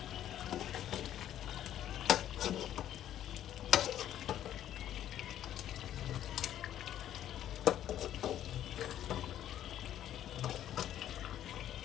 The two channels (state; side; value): quieter; right; 11.5 dB